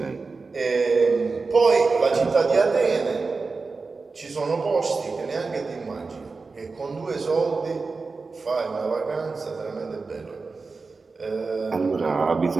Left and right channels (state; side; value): quieter; left; 4.2 dB